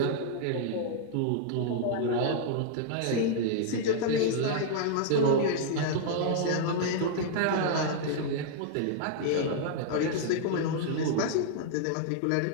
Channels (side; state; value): both; different; correlation -0.01